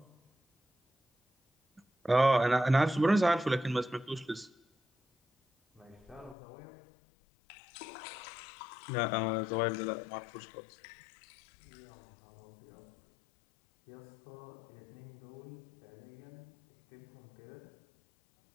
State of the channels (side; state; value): right; drops out; at 6.4 s